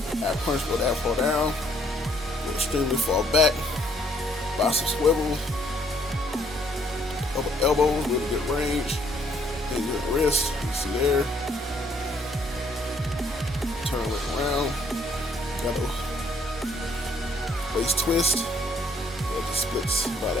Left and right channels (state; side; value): normal; both; correlation 0.66